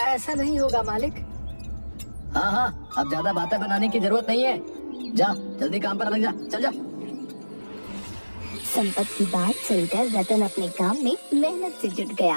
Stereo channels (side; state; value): both; inverted; correlation -1.00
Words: ऐसा नहीं होगा मालिक। हाँ हाँ, अब ज्यादा बातें बनाने की जरूरत नहीं है, जा जल्दी काम पर लग जा, चल जा। संपत की बात सुनकर रतन अपने काम में मेहनत से जुट